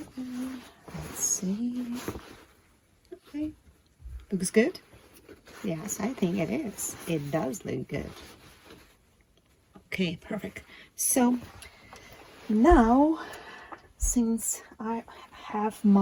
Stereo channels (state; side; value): identical; both; correlation 1.00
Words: Let's see. Okay. Looks good? Yes, I think it is. It does look good. Okay, perfect. So now, since I have